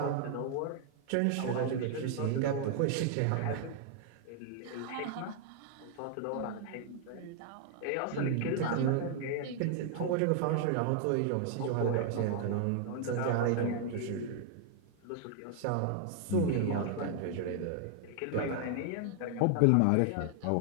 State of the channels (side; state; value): both; different; correlation 0.00